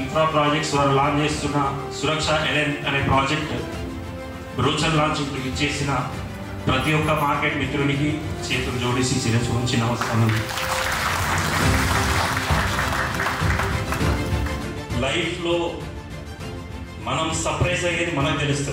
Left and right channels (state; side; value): identical; both; correlation 1.00